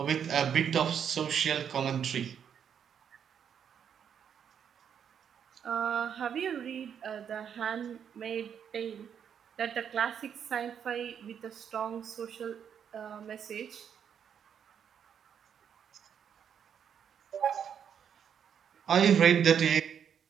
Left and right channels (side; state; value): left; quieter; 8.1 dB